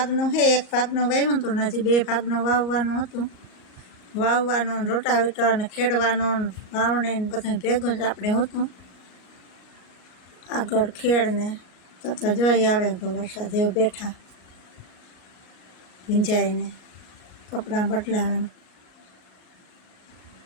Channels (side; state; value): right; late; 38 ms